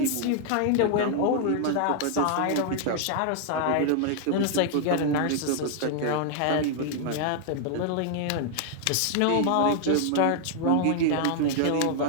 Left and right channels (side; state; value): both; different; correlation 0.00